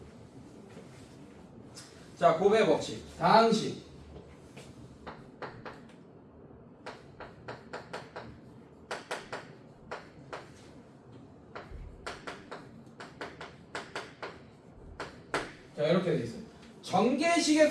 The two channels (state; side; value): identical; both; correlation 1.00